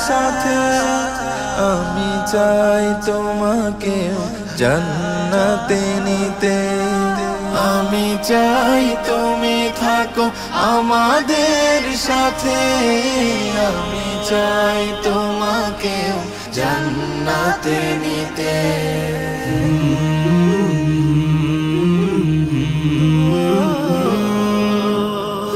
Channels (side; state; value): both; identical; correlation 1.00